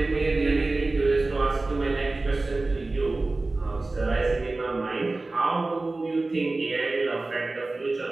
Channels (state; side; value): quieter; left; 3.2 dB